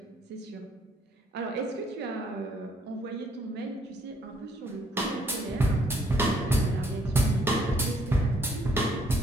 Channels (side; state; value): both; normal; correlation 0.66